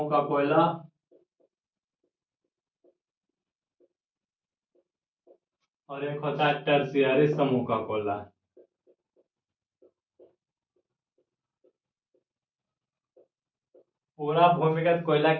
का कोयला और एक होता है टर्शियरी समूह का कोयला। पूरा भूमिगत कोयला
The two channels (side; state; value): both; identical; correlation 1.00